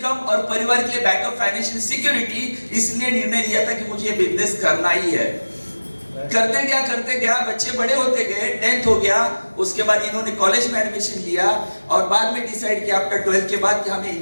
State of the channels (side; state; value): both; inverted; correlation -1.00